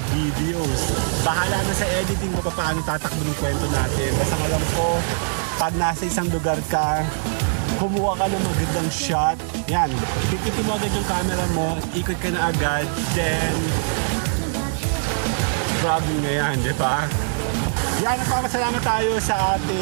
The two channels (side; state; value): left; silent; 58 dB below the other